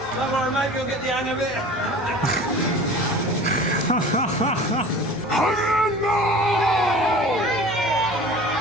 Don't worry, mate, you'll get the hang of it.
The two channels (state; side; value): normal; both; correlation 0.41